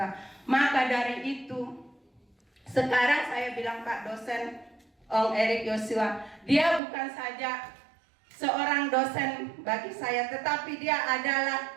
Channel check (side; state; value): left; drops out; at 6.8 s